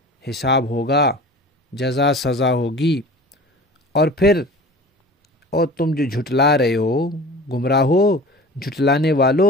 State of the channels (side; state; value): both; normal; correlation 0.40